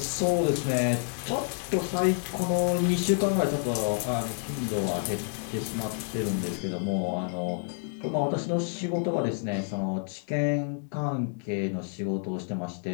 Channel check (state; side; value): silent; right; 59 dB below the other